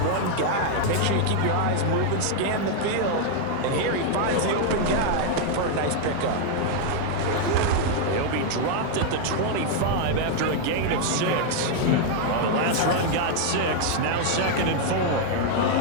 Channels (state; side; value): different; both; correlation 0.00